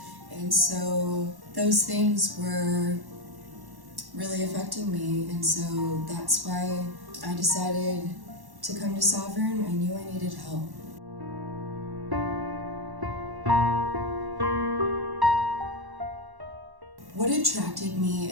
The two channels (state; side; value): late; left; 1.1 ms